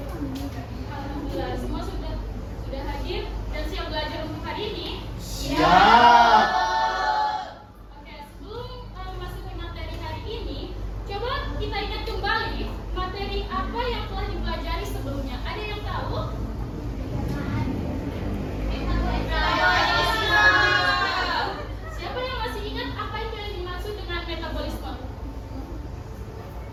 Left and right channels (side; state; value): both; identical; correlation 1.00